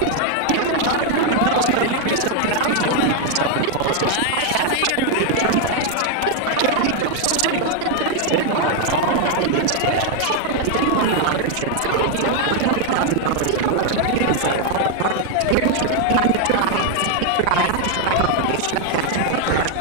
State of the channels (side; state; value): both; different; correlation 0.00